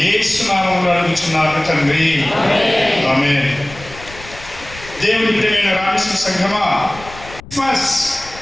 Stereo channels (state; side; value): noise; left; rumble, 17 dB below the sound